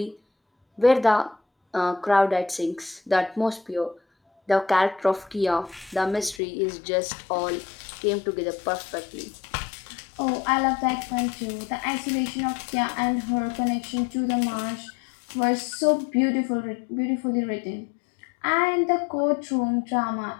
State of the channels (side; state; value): right; drops out; at 6.4 s